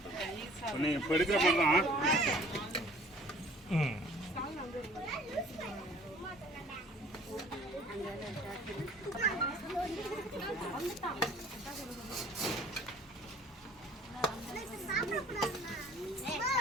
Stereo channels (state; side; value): normal; both; correlation 0.52